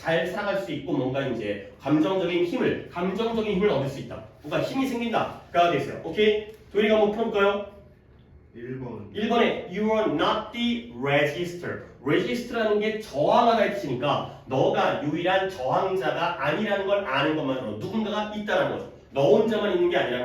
살아갈 수 있고 뭔가 이제 감정적인 힘을 얻을 수 있다. 뭔가 힘이 생긴다가 됐어요. 오케이? 도희가 한번 풀어볼까요? 1번에 You are not the register. register라는 게 저항하다의 뜻이니까 너가 유일한 저항자가 아니라는 걸 아는 것만으로 누군가가 있다는 거죠. 너 혼자만 있는 게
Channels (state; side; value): identical; both; correlation 1.00